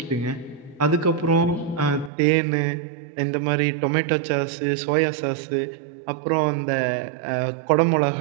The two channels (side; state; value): left; drops out; at 2.1 s